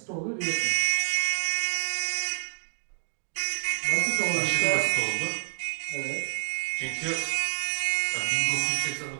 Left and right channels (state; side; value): silent; left; digital silence